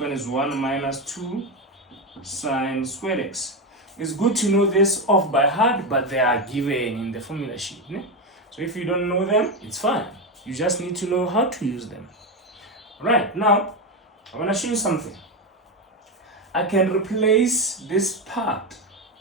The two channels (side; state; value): both; normal; correlation 0.12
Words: is 1 minus 2 sine squared x. It's good to know this off by heart, but they are given in the formula sheet. So if you don't know them, it's fine. You just need to know how to use them. Right, now I want to show you something. I can replace this part